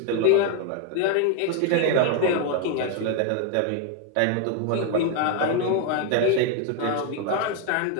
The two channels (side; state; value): both; different; correlation 0.01